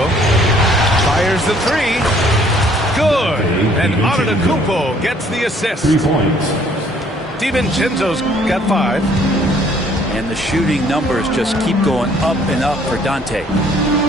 Fires the 3. Good. And Antetokounmpo gets the assist. 3 points. DiVincenzo's got 5. And the shooting numbers just keep going up and up for Dante.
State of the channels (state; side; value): normal; both; correlation 0.61